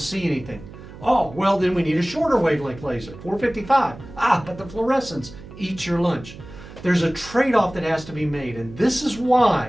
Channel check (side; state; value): right; noise; hum, 16 dB below the sound